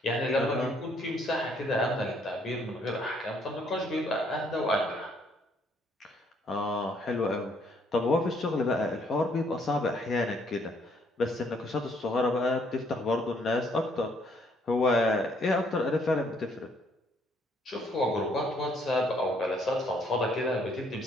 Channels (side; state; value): both; normal; correlation 0.67